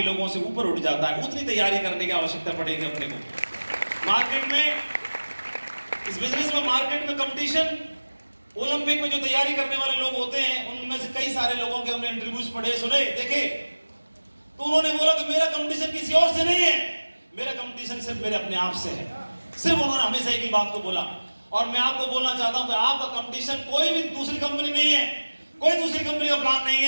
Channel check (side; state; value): both; inverted; correlation -1.00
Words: लोगों से ऊपर उठ जाता है। उतनी तैयारी करने की आवश्यकता पड़ेगी अपने को। मार्केट में, इस बिजनेस में मार्केट में कंपटीशन, ओलंपिक में जो तैयारी करने वाले लोग होते हैं उनमें से कई सारे लोगों के हमने इंटरव्यूज पढ़े, सुने, देखे, तो उन्होंने बोला कि मेरा कंपटीशन किसी और से नहीं है, मेरा कंपटीशन सिर्फ मेरे अपने आप से है। सिर्फ उन्होंने हमेशा एक ही बात को बोला। और मैं आपको बोलना चाहता हूं कि आपका कंपटीशन कोई भी दूसरी कंपनी नहीं है, कोई दूसरी कंपनी का प्लान नहीं